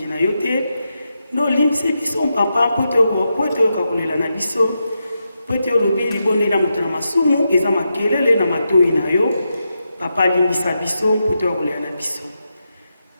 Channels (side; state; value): both; inverted; correlation -0.86